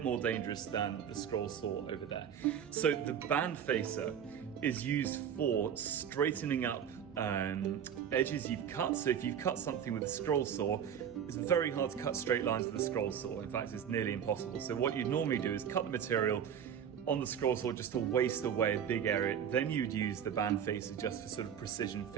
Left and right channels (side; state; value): left; quieter; 8.5 dB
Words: more dangerous than the scroll saw over there. So the band facer is used for straightening up edges you've cut. So if you've cut something with a scroll saw, it's very hard to cut straight lines with a scroll saw. In fact, it's nearly impossible. So what you'd normally do is cut the material on the scroll saw just to waste away a big area. Then you'd use the band facer just for sort of precision